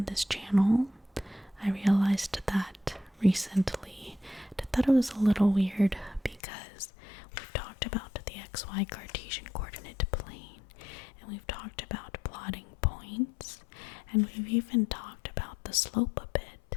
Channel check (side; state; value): right; drops out; at 6.4 s